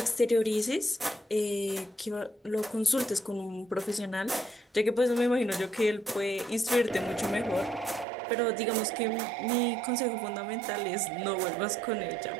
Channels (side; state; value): left; drops out; at 8.1 s